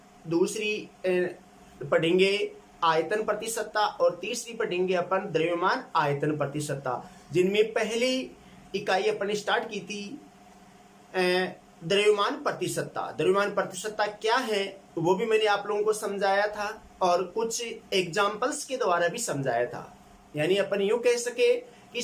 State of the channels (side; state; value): both; identical; correlation 1.00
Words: दूसरी पढ़ेंगे आयतन प्रति सत्ता और तीसरी पढ़ेंगे अपन द्रव्यमान आयतन प्रति सत्ता। जिनमें पहली इकाई अपन ने स्टार्ट की थी द्रव्यमान प्रति सत्ता। द्रव्यमान प्रति सत्ता क्या है वो भी मैंने आप लोगों को समझाया था और कुछ एग्जाम्पल्स के द्वारा भी समझाया था। यानी अपन यूं कह सके कि